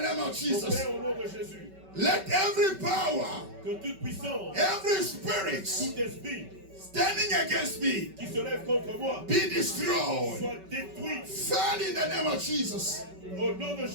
name of Mon Jesus. Père, au nom de Jésus. Let every power, Que toute puissance, every spirit tout esprit standing against me qui se lève contre moi be destroyed. soit détruit Fall in the name of Jesus. au nom de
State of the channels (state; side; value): late; left; 5.2 ms